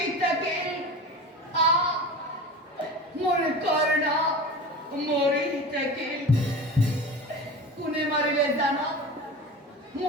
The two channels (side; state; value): both; normal; correlation 0.32